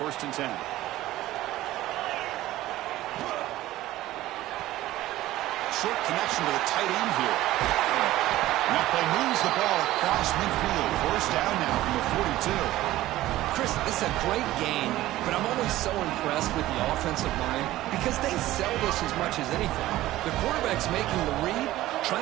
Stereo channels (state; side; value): quieter; left; 15.7 dB